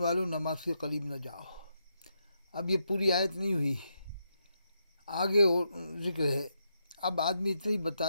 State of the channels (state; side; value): inverted; both; correlation -0.82